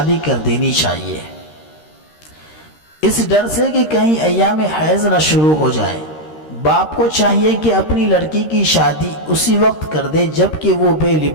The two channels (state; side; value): late; right; 13 ms